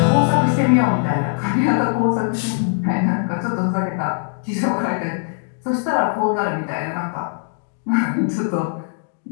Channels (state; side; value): silent; right; digital silence